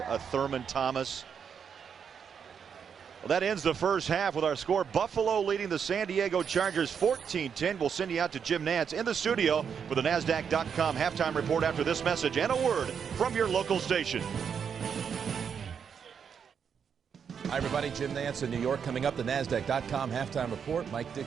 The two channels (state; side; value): quieter; left; 7.1 dB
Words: a Thurman Thomas. Well, that ends the first half with our score. Buffalo leading the San Diego Chargers 14-10. We'll send you out to Jim Nantz in the studio for the NASDAQ.com halftime report after this message and a word from your local station. Hi, everybody. Jim Nantz in New York. Coming up, the NASDAQ.com halftime report. Mike Dick